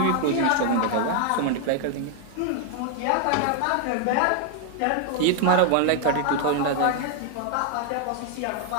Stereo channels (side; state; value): both; different; correlation 0.00